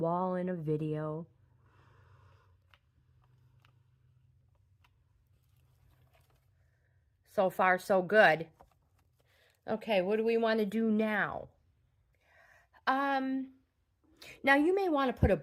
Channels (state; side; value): identical; both; correlation 1.00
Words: in a video. So far, so good. Okay, what do we want to do now? Now you may want to put a